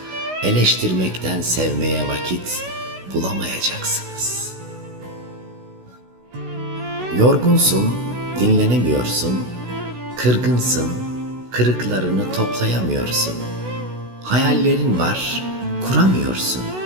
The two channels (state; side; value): late; left; 16 ms